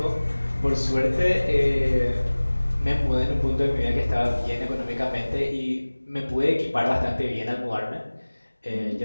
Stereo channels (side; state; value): both; inverted; correlation -1.00